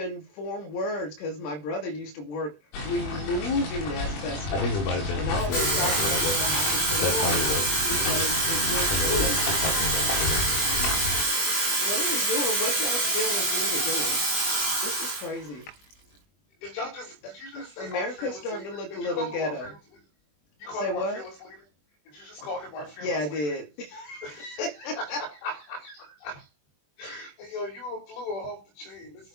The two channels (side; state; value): right; late; 20 ms